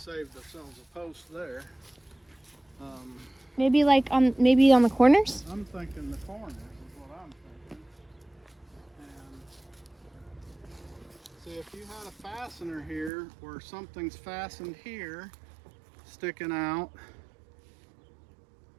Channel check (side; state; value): left; drops out; at 13.1 s